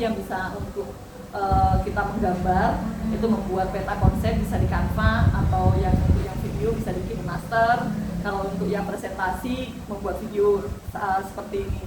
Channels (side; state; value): both; identical; correlation 1.00